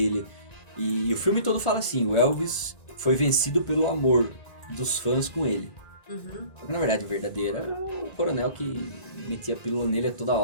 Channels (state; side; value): late; right; 1.4 ms